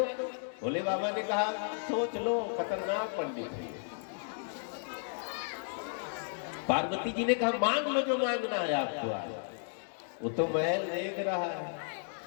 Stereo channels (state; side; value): silent; right; digital silence